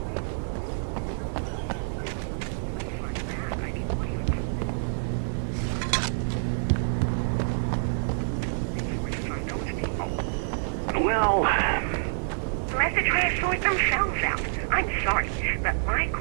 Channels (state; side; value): silent; left; 57 dB below the other